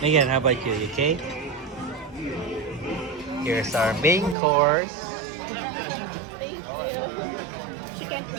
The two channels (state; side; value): drops out; left; at 4.4 s